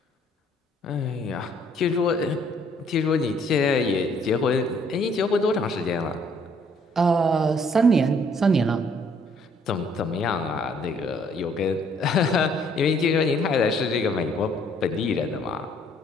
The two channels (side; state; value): both; normal; correlation 0.63